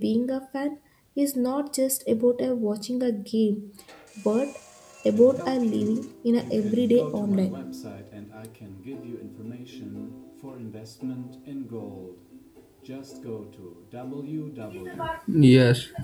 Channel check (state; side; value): identical; both; correlation 1.00